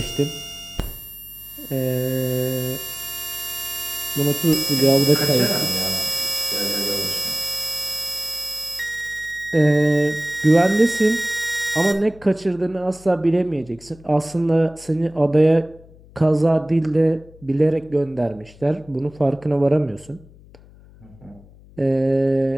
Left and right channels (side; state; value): left; noise; hum, 23 dB below the sound